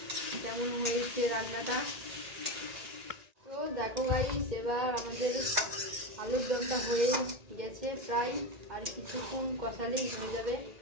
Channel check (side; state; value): left; late; 1.8 ms